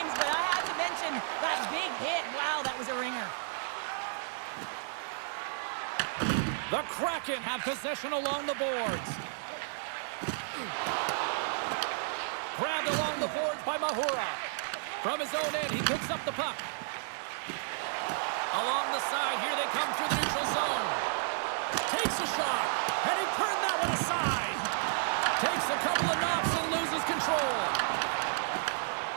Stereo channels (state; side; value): silent; left; 56 dB below the other